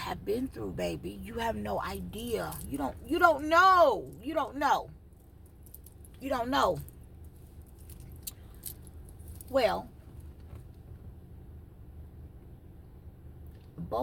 been through, baby. You have no idea. You don't know. You don't know. You don't know. Well,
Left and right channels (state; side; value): identical; both; correlation 1.00